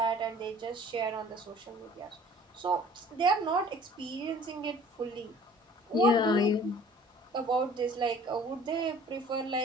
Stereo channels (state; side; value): normal; both; correlation 0.50